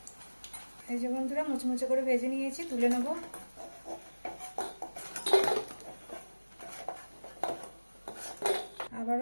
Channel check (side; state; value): both; inverted; correlation -1.00